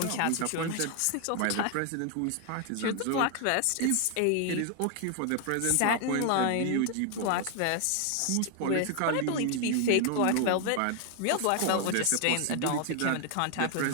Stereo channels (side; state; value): both; different; correlation 0.00